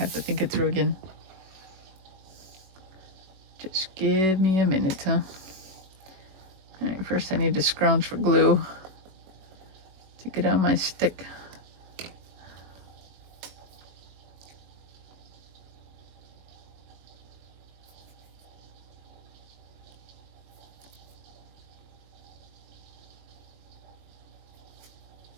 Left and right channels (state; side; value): late; left; 21 ms